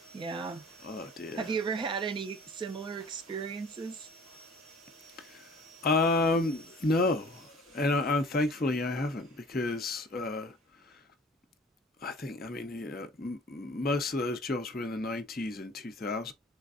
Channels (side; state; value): both; normal; correlation 0.48